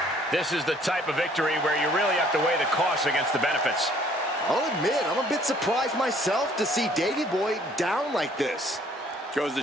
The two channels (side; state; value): both; normal; correlation 0.59